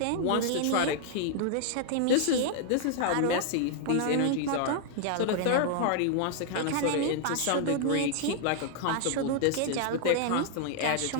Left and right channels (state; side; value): different; both; correlation -0.01